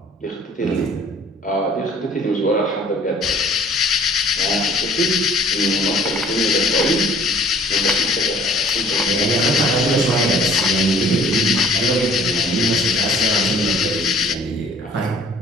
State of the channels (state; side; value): normal; both; correlation 0.53